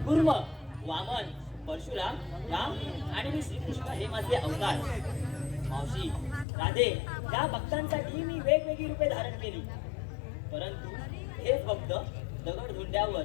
कुर्म, वामन, परशुराम, राम आणि मी श्रीकृष्ण हे माझे अवतार. मावशी, राधे, या भक्तांसाठी मी वेगवेगळी रूपे धारण केली. परंतु हेच भक्त दगड धुंड्यावर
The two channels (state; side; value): drops out; right; at 6.5 s